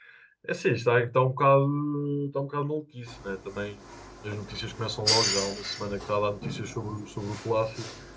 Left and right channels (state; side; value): identical; both; correlation 1.00